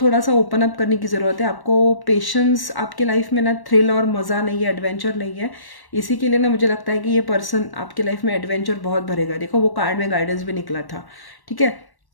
सा ओपन अप करने की ज़रूरत है। आपको पेशेंस, आपकी लाइफ में ना थ्रिल और मज़ा नहीं है, एडवेंचर नहीं है। इसी के लिए ना मुझे लगता है कि ये पर्सन आपकी लाइफ में एडवेंचर बहुत भरेगा। देखो वो कार्ड में गाइडेंस भी निकला था, ठीक है।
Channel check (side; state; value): right; late; 1.1 ms